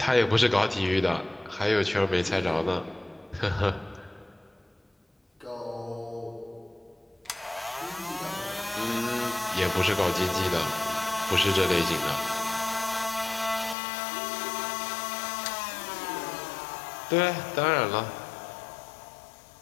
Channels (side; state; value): right; drops out; at 13.8 s